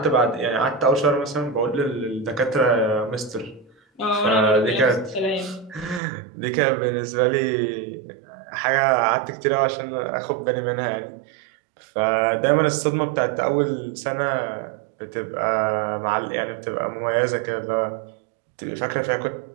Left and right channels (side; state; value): left; drops out; at 6.0 s